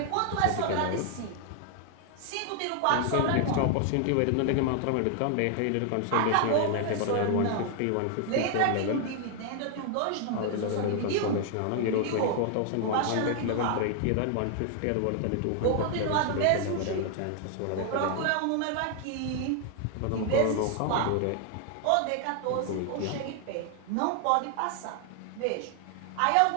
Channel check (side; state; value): both; different; correlation 0.00